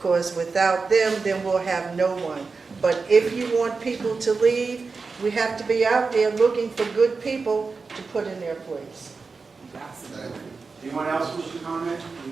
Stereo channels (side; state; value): left; quieter; 4.5 dB